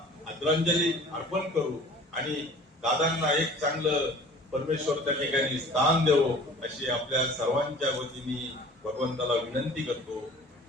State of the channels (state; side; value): normal; both; correlation 0.46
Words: आदरांजली अर्पण करू आणि दादांना एक चांगलं परमेश्वर त्या ठिकाणी स्थान देवो अशी आपल्या सर्वांच्या वतीने भगवंताला विनंती करतो.